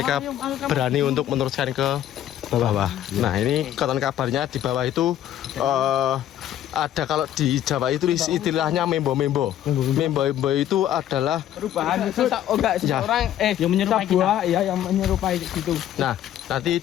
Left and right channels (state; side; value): quieter; right; 11.6 dB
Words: berani untuk meneruskan ke bawah. Nah, ini konon kabarnya di bawah itu ada, kalau di Jawa itu istilahnya membo-membo. Membo itu adalah Perubahan itu seseorang Yang menyerupai buah ya yang menyerupai gitu. nah, nanti